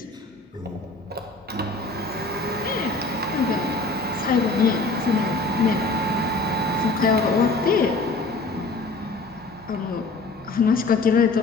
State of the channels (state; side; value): quieter; right; 3.4 dB